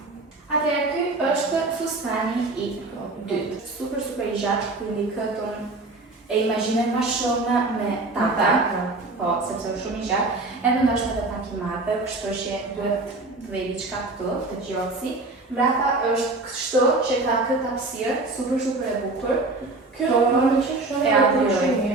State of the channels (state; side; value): quieter; left; 3.2 dB